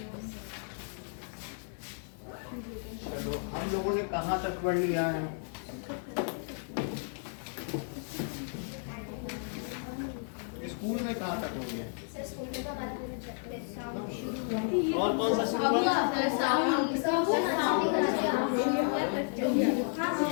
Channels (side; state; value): right; silent; 56 dB below the other